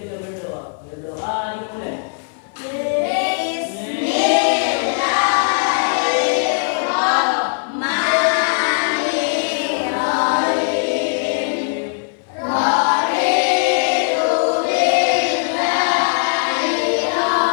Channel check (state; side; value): silent; right; 59 dB below the other